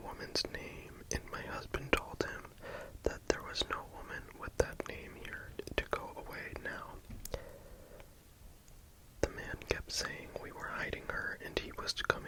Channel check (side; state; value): both; identical; correlation 1.00